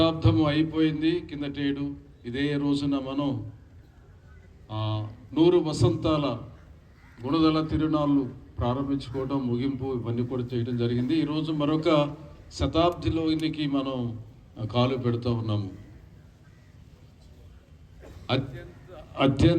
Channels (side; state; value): both; identical; correlation 1.00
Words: అయిపోయింది కిందటేడు. ఇదే రోజున మనం 100 వసంతాల గుణదల తిరునాళ్ళు ప్రారంభించుకోవడం, ముగింపు ఇవన్నీ కూడా చేయడం జరిగింది. ఈరోజు మరొక శతాబ్దిలోనికి మనం కాలు పెడుతూ ఉన్నాము.